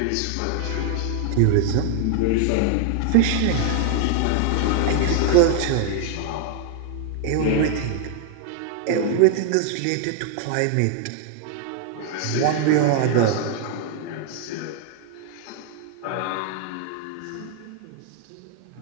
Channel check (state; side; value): different; both; correlation 0.00